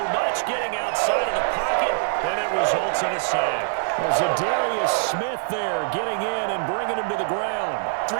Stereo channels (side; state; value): left; silent; digital silence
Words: much, getting outside of the pocket, and it results in a sack. There's a Darius Smith there getting in and bringing him to the ground.